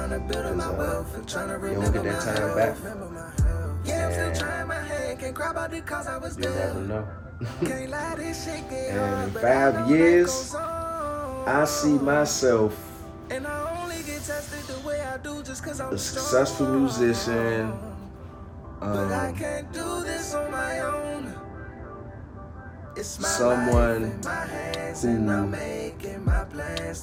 don't get that time back. And you never know. And in 5 years, I see myself a successful musician, someone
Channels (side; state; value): both; identical; correlation 1.00